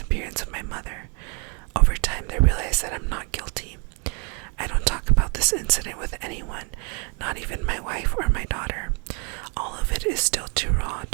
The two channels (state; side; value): quieter; left; 33.6 dB